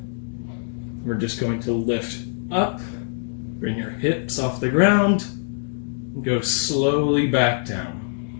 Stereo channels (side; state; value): right; silent; digital silence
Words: We're just going to lift up, bring your hips off the ground, and go slowly back down.